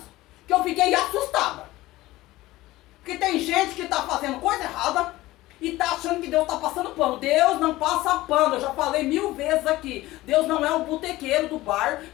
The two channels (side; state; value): right; quieter; 17.7 dB